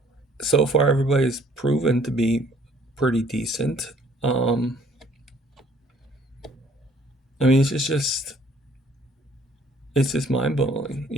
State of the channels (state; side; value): normal; both; correlation 0.60